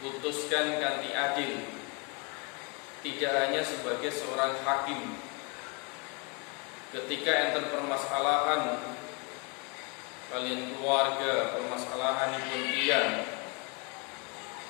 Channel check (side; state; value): right; quieter; 31.5 dB